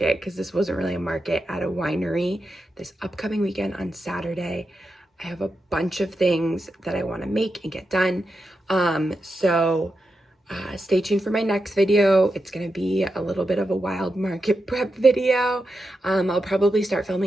because this wasn't really a market, at a winery this upcoming weekend on Saturday. I have a bunch of things that I want to make and get done. Stay tuned for my next video. It's going to be a little bit of a wild market prep video. I'll probably start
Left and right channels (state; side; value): normal; both; correlation 0.88